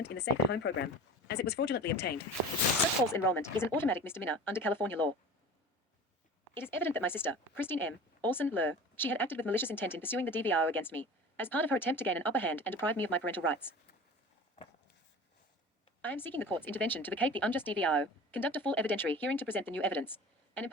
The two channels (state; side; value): normal; both; correlation 0.37